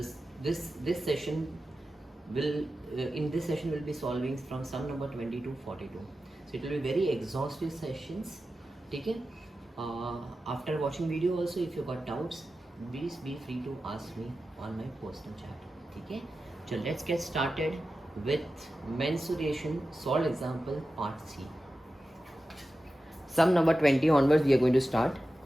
session will in this session will be solving from sum number 20 to 42. So it will be very exhaustive sessions. Okay. After watching video also, if you got doubts, please be free to ask me on my personal chat. Okay. So let's get started with mensuration solved example part C. Sum number 20 onwards we are going to start.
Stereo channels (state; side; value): normal; both; correlation 0.93